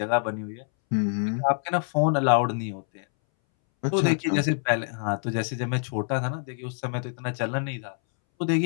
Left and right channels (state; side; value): silent; right; 61 dB below the other